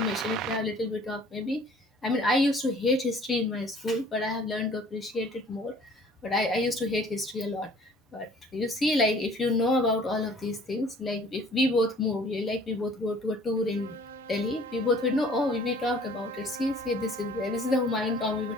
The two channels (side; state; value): both; normal; correlation 0.53